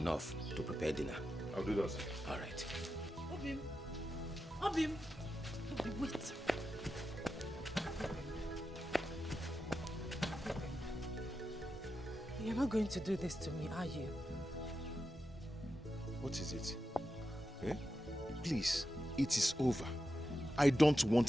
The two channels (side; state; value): both; normal; correlation 0.89